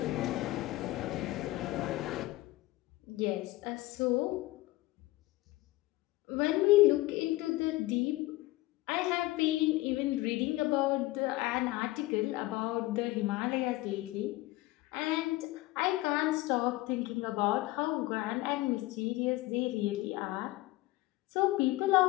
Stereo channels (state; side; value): quieter; right; 18.8 dB